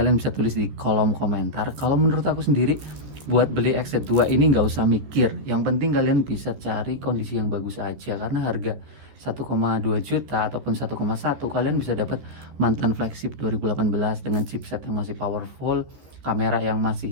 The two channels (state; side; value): late; left; 14 ms